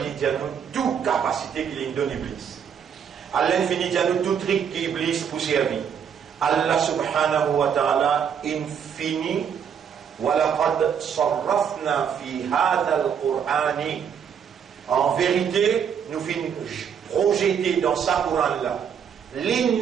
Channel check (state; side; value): quieter; left; 7.7 dB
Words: dit à nous toute capacité qu'il donne Iblis. Allah infini dit à nous tout truc qu'Iblis pour servir. Allah subhanahu wa ta'ala infini وَلَقَدْ صَرَّفْنَا فِي هَذَا الْقُرْآنِ. En vérité, nous finissons projeter dans ce Coran-là.